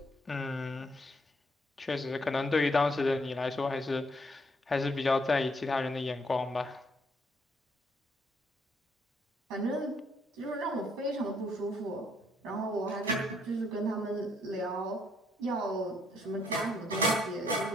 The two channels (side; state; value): both; normal; correlation 0.70